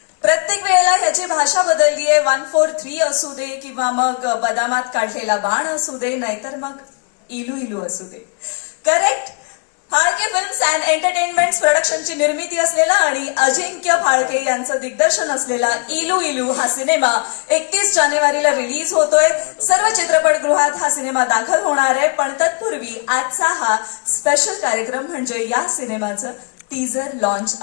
प्रत्येक वेळेला ह्याची भाषा बदललीये. 143 असू दे किंवा मग बदामात काढलेला बाण असू दे, नाहीतर मग इलू इलू असू दे. Correct. Phalke films and entertainments प्रोडक्शनची निर्मिती असलेला आणि अजिंक्य फाळके यांचं दिग्दर्शन असलेला इलू इलू हा सिनेमा 31 जानेवारीला रिलीज होतोय. सर्व चित्रपटगृहात हा सिनेमा दाखल होणार आहे. पण तत्पूर्वी आजचा हा स्पेशल कार्यक्रम म्हणजे या सिनेमाचं टीझर लॉन्च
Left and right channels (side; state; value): right; quieter; 37.0 dB